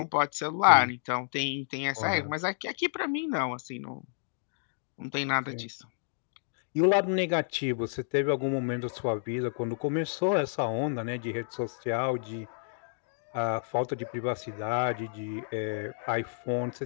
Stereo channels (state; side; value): silent; right; digital silence